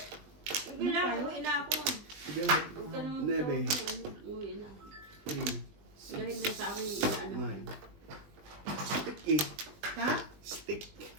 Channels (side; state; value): left; late; 20 ms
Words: Hindi na, uwi na ako. Sige, Huwag ka nang Nebe. uwi na. 3, Dahil na sa akin, ano. 9. Stick eh. Ha? Stick.